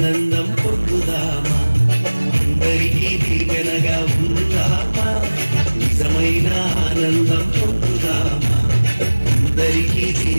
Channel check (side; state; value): both; inverted; correlation -1.00